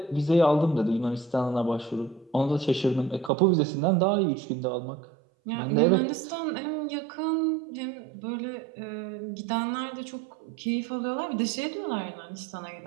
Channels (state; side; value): drops out; left; at 3.3 s